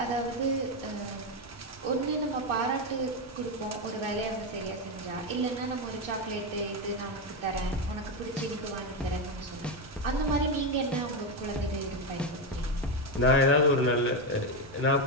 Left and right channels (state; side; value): normal; both; correlation 0.09